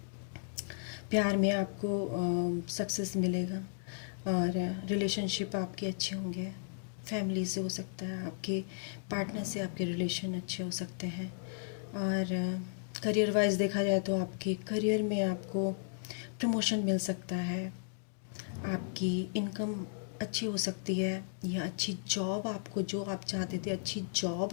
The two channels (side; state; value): right; silent; digital silence